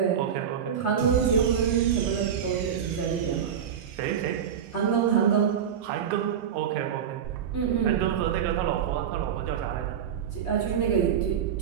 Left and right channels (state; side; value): quieter; left; 8.3 dB